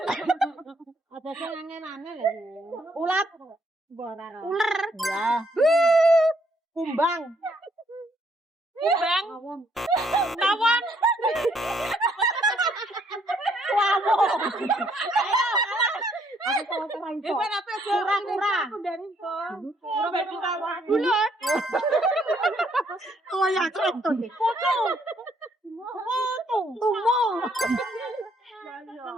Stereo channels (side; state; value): both; normal; correlation 0.69